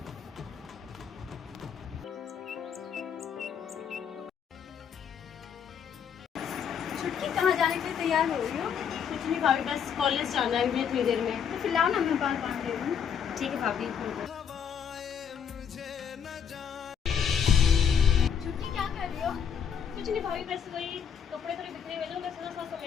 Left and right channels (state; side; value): quieter; right; 7.7 dB